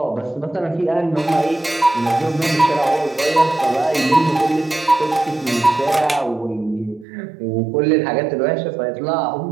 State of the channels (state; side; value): drops out; left; at 7.1 s